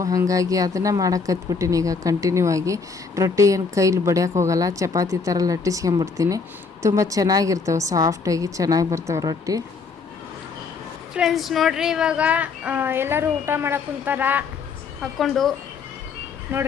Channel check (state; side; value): quieter; right; 4.9 dB